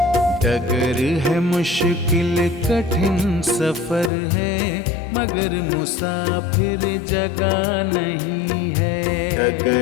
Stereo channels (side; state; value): right; drops out; at 4.1 s